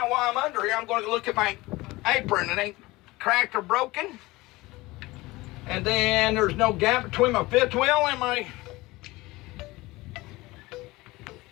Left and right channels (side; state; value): right; quieter; 20.6 dB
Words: while I'm under here, I'm going to look at my apron. It ain't cracked or broken. And then there's no gap between my fifth wheel and my